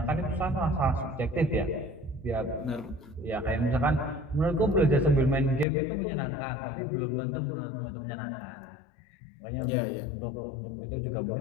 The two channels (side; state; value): right; drops out; at 5.7 s